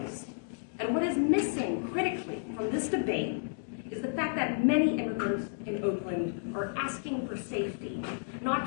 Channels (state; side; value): silent; right; digital silence